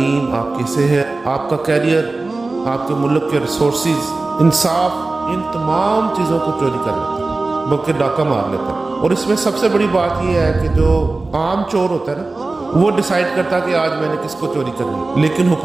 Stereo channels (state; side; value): quieter; left; 3.3 dB